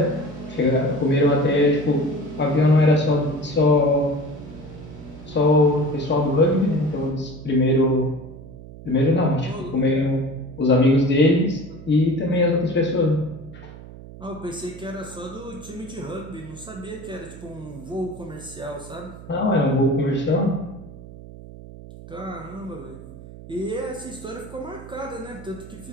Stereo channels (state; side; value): noise; right; hum, 16 dB below the sound